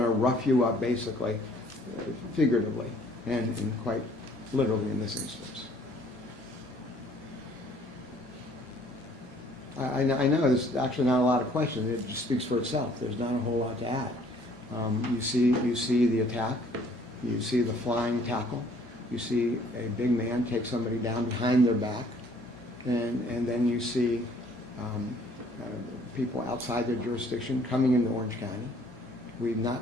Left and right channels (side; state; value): both; normal; correlation 0.59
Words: rough you up, basically, figuratively, and quite literally in this instance. I know there's actually not a lot of questions. It just speaks for itself. There's not a whole lot to add. You see the attack. You see the flying tackle. You see a big man take somebody down behind their back. And then you see people outside their jurisdiction coming into Orange County. We've